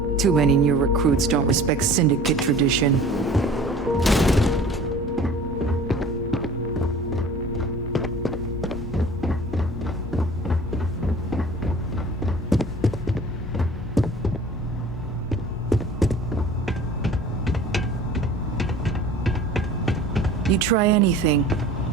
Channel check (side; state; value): both; normal; correlation 0.44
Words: Too many new recruits don't respect syndicate tradition. You try anything,